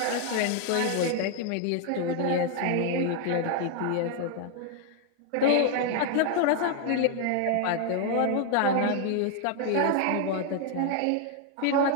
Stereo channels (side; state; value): both; different; correlation 0.00